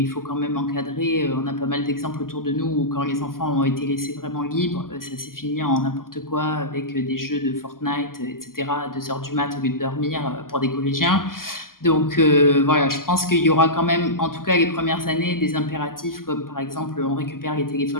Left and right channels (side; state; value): right; late; 0.91 ms